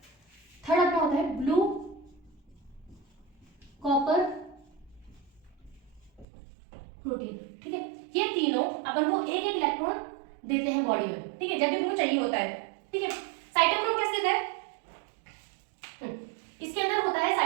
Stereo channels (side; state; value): left; drops out; at 6.2 s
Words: थर्ड अपना होता है ब्लू कॉपर प्रोटीन, ठीक है। ये तीनों अपन को एक एक इलेक्ट्रॉन देते हैं बॉडी में, ठीक है, जब भी उनको चाहिए होता है, ठीक है। साइटोक्रोम कैसे देता है, इसके अंदर होता है